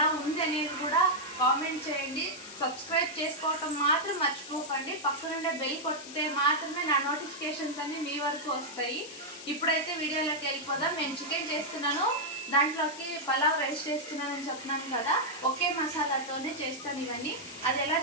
ఉంది అనేది కూడా కామెంట్ చేయండి. సబ్స్క్రైబ్ చేసుకోవటం మాత్రం మర్చిపోకండి. పక్కనుండే బెల్ కొట్టితే మాత్రమే నా నోటిఫికేషన్స్ అన్ని మీ వరకు వస్తాయి. ఇప్పుడైతే వీడియోలోకి వెళ్ళిపోదాం. నేను చికెన్ చేస్తున్నాను, దాంట్లోకి పలావ్ రైస్ చేస్తున్నానని చెప్పినాను కదా. ఒకే మసాలాతోనే చేస్తాను ఇవన్నీ. అది ఎలా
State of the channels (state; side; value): noise; left; hiss, 13 dB below the sound